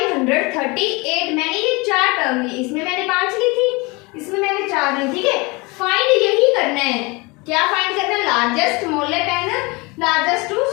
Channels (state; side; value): quieter; right; 26.1 dB